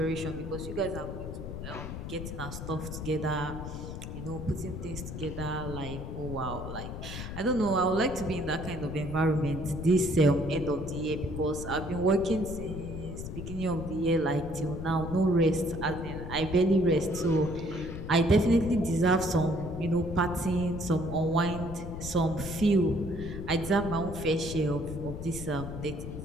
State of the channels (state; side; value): noise; left; rumble, 8 dB below the sound